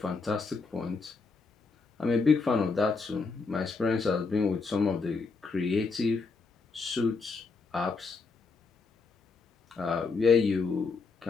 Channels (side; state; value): right; quieter; 4.4 dB